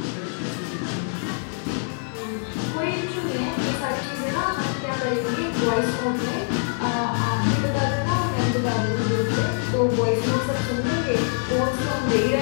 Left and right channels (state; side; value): silent; right; 62 dB below the other